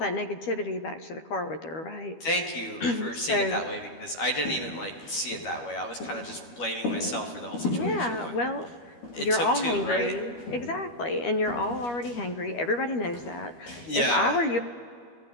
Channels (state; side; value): late; right; 12 ms